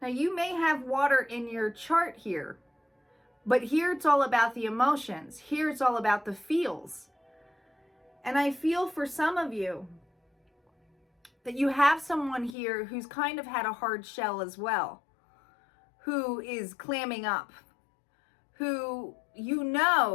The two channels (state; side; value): drops out; right; at 12.6 s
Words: Now, you may have water in your chart here, But here it's all about the emotions. Here it's all about the feels. And I feel for some of you that you have someone here who's kind of had a hard shell as well, who is clamming up, who you